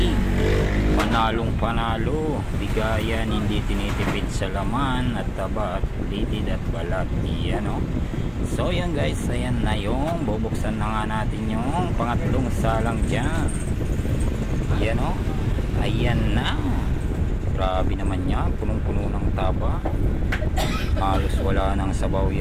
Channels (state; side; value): identical; both; correlation 1.00